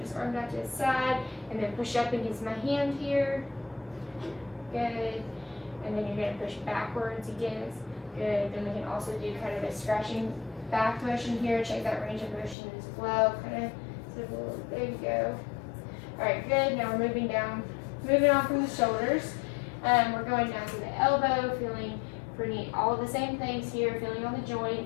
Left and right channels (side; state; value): right; drops out; at 12.6 s